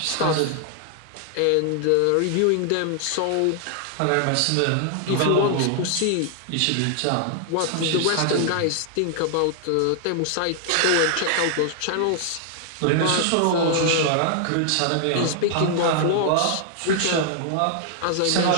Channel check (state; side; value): different; both; correlation 0.00